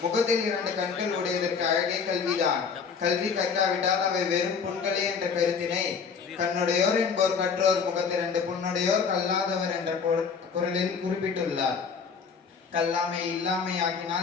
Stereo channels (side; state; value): right; quieter; 5.8 dB